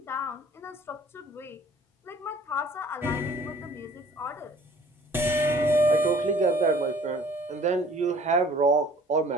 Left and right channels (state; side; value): normal; both; correlation 0.53